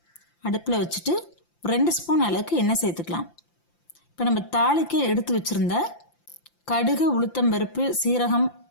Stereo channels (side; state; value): right; late; 5.8 ms